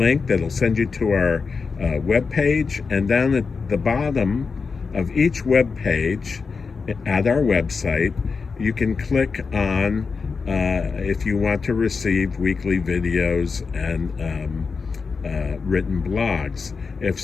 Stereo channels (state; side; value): quieter; right; 4.9 dB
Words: that'll send you to our webpage, and down at the bottom of each web page at our website, you can click on if you want to receive weekly videos and written blogs. If